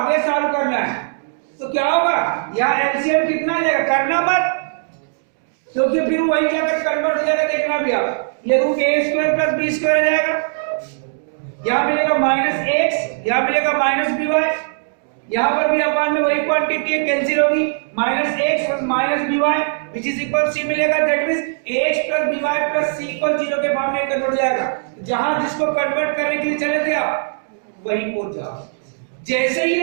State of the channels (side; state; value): left; silent; digital silence